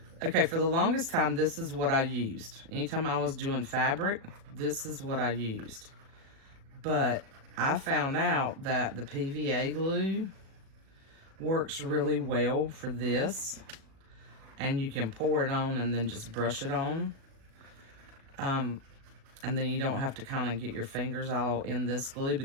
okay, for the longest time, this is what I used. Anytime I was doing fabric, this is what I used. But I found out that the PVA glue works really well for this. And you can pour it on and then just brush it on. And then you don't have to kind of get your fingers all in this glue,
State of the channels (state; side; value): late; left; 37 ms